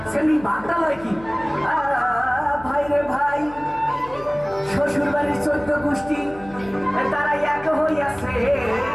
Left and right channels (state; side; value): noise; left; hum, 20 dB below the sound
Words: সেমনি ভাগটা লয় কি ভাই রে ভাই শ্বশুর বাড়ির 14 গোষ্ঠী তারা এক হইয়াছে